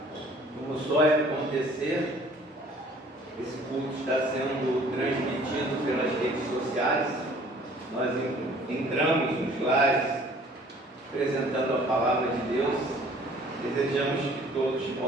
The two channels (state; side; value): normal; both; correlation 0.53